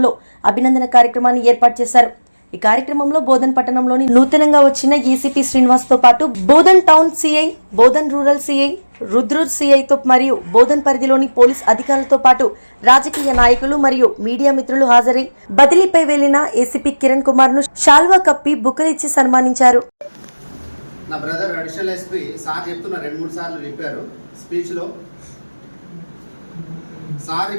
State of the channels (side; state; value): both; inverted; correlation -1.00